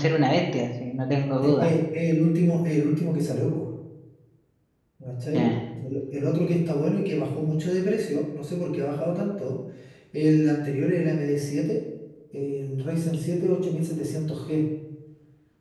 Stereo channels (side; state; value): both; identical; correlation 1.00